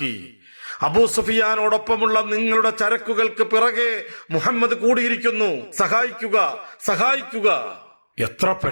അബൂ സുഫിയാനോടൊപ്പമുള്ള നിങ്ങളുടെ ചരക്കുകൾക്ക് പിറകെ മുഹമ്മദ് കൂടിയിരിക്കുന്നു. സഹായിക്കുക. എത്ര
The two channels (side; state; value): both; inverted; correlation -1.00